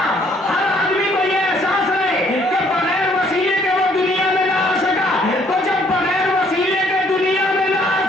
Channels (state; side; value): normal; both; correlation 0.64